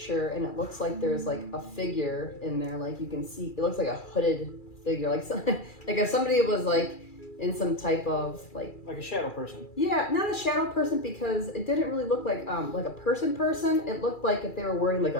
and it looks like there's like a figure in there. Like you can see, it looks like a hooded figure, like like if somebody was like in some type of like a shadow person. Yeah, not a shadow person because it didn't really look like a person. It looked like if they were wearing like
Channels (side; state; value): right; late; 2.4 ms